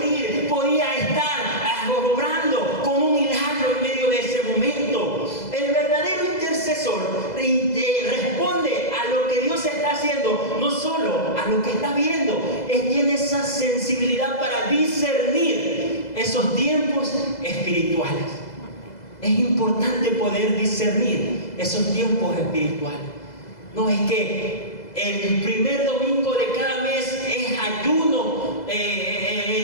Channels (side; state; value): right; late; 2.0 ms